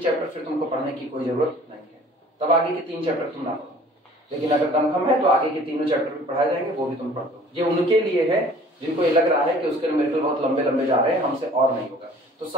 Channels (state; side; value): normal; both; correlation 0.50